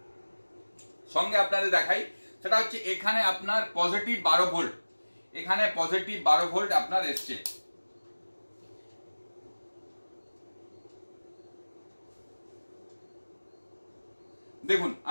সঙ্গে আপনাদের দেখাই, সেটা হচ্ছে এখানে আপনার পজিটিভ 12 ভোল্ট, এখানে পজিটিভ 12 ভোল্ট আপনার এসছে। দেখুন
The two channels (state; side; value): inverted; both; correlation -1.00